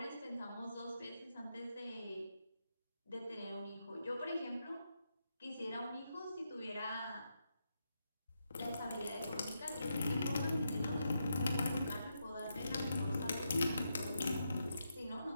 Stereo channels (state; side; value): inverted; both; correlation -0.84